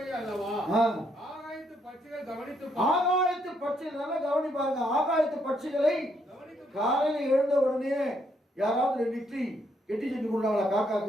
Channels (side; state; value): both; normal; correlation 0.73